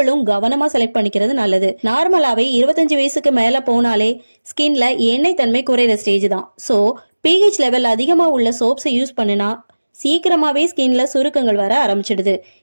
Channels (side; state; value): both; inverted; correlation -1.00